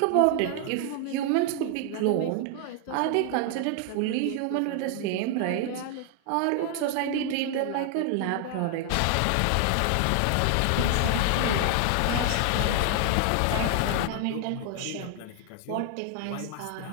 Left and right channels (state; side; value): different; both; correlation 0.00